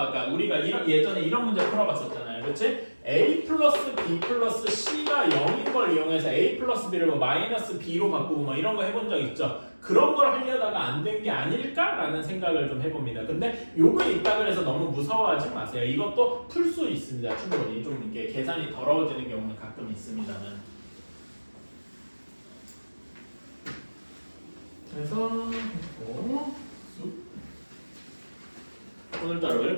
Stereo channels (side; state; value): both; inverted; correlation -1.00